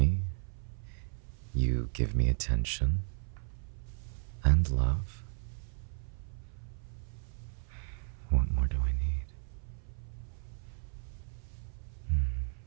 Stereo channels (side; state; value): left; silent; 55 dB below the other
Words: You give me attention and love. What more do I need?